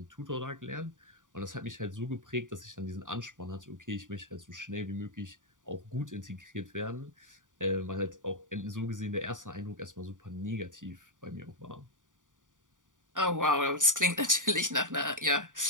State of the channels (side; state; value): left; late; 0.88 ms